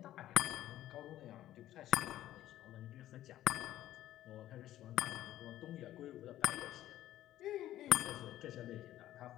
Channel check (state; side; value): quieter; right; 13.5 dB